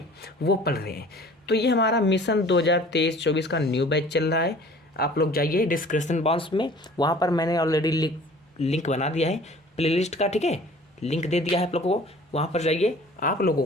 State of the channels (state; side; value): normal; both; correlation 0.48